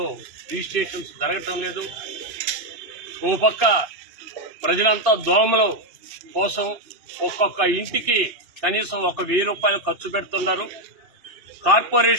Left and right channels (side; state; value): left; late; 2.5 ms